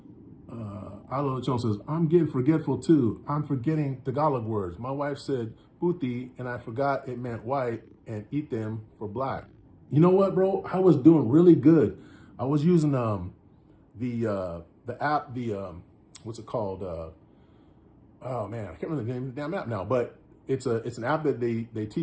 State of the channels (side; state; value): both; identical; correlation 1.00